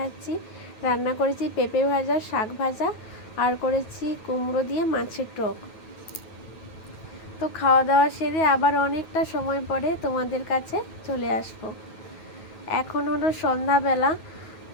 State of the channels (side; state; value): right; late; 9.3 ms